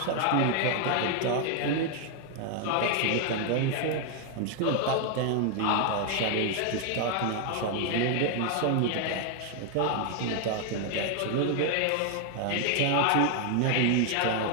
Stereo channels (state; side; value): different; both; correlation 0.00